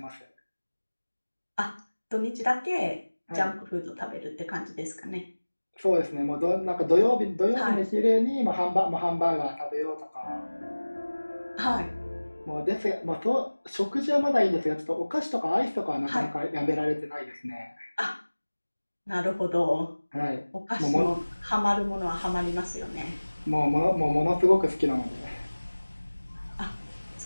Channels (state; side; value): inverted; both; correlation -1.00